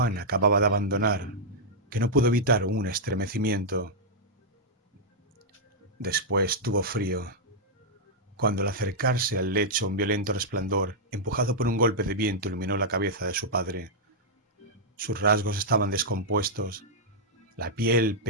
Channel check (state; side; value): normal; both; correlation -0.08